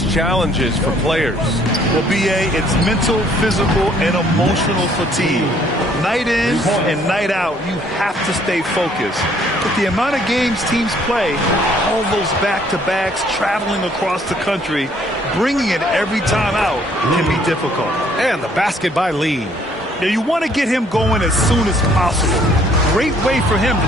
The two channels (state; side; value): normal; both; correlation 0.62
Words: challenges for players? Well, B.A., it's mental, physical, and emotional fatigue. Night in and night out, you have to stay focused. But the amount of games teams play, all those back-to-backs, traveling across the country, bringing it every time out can be difficult. And the basket by Lee. Now, you want to get him going as soon as possible. Great way for him to